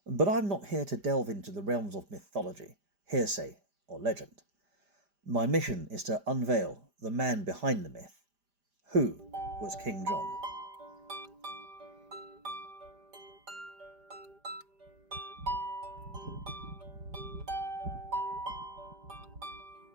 But I'm not here to delve into the realms of mythology, hearsay, or legend. My mission is to unveil the man behind the myth. Who was King John?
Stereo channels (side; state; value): left; late; 5.0 ms